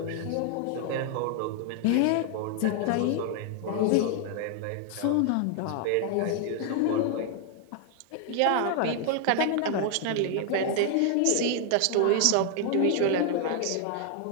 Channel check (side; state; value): both; different; correlation 0.00